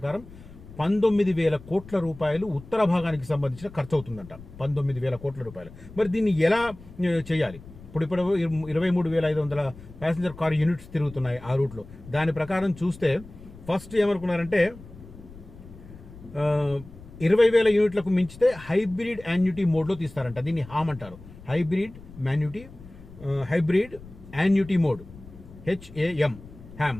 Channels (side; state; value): left; noise; rumble, 18 dB below the sound